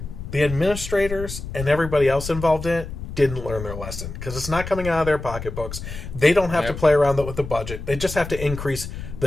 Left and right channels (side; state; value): left; noise; rumble, 9 dB below the sound